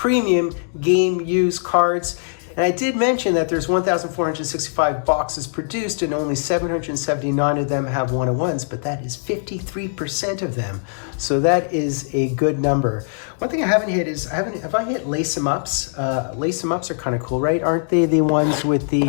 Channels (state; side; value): silent; right; digital silence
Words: game use cards. And I did mention that there's 1,465 boxes produced and only 779 of them have 101s, but that is 53% of them. So that is a good number. One thing I haven't hit is, have I hit lace 'em ups? Lace 'em ups are kind of cool, right? Aren't they the ones with the